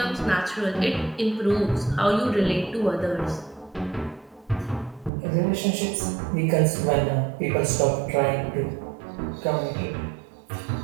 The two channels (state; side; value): drops out; left; at 5.1 s